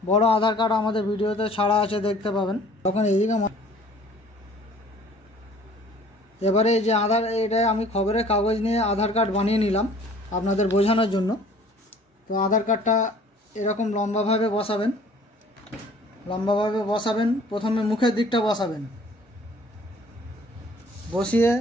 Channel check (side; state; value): both; normal; correlation 0.53